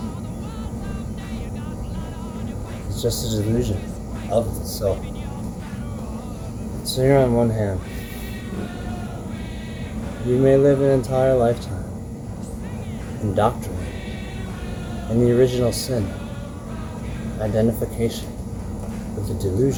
is just a delusion of the self? So here on one hand, you may live an entire lifetime indoctrinated in the original sin, identification with the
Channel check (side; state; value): both; identical; correlation 1.00